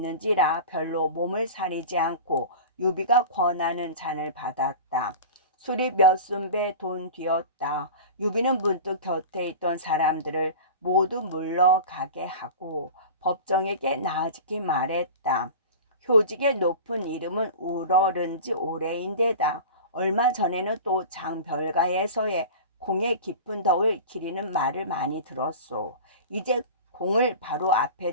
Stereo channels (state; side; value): inverted; both; correlation -0.33